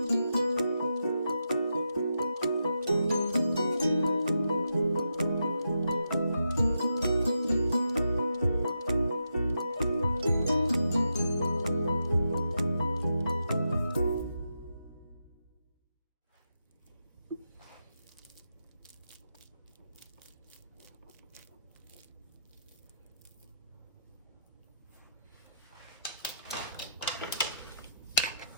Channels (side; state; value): both; inverted; correlation -0.84